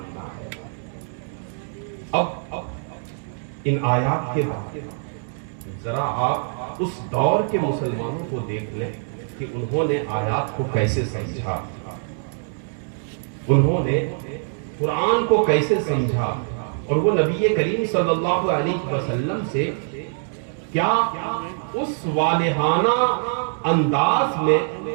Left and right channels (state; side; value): silent; left; digital silence